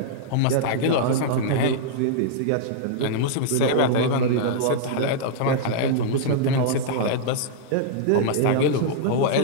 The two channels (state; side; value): different; both; correlation -0.02